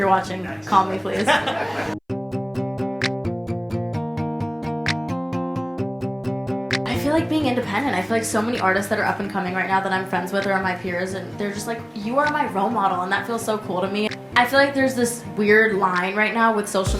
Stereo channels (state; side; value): identical; both; correlation 1.00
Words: watching, call me please. I feel like being independent. I feel like so many artists that are up and coming right now that I'm friends with or are my peers, and they're just like, you are my role model, and that feels so cool to me. I feel like there's this weird line right now with